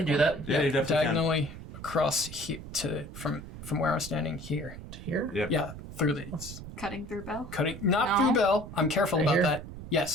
do that. Yeah, you definitely diagonally across from where I'm standing here. To here? can. Yep. Yeah, through these. Cutting through Bell. Cutting, not No. through Bell. I'm careful Right about here? that.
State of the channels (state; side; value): noise; right; rumble, 12 dB below the sound